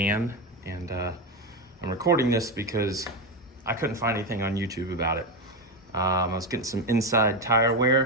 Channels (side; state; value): both; normal; correlation 0.13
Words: and I'm recording this because I couldn't find anything on YouTube about it. I was getting some inside tire